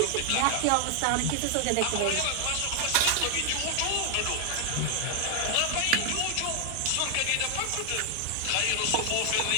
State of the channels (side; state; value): both; different; correlation 0.00